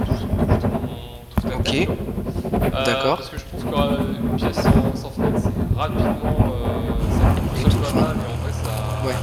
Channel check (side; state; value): both; identical; correlation 1.00